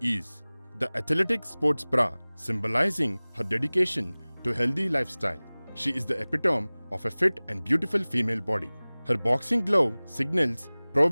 the athletic sports bra, symbolizing her dedication to a healthy lifestyle. She is the epitome of a fit and beautiful female body. Her boxing glove signals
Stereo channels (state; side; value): inverted; both; correlation -1.00